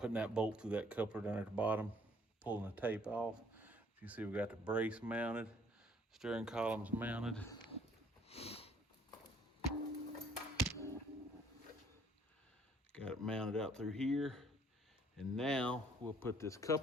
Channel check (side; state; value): both; normal; correlation 0.61